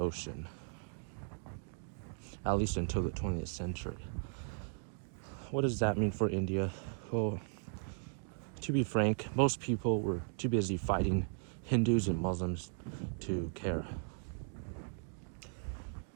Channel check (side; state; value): left; silent; 53 dB below the other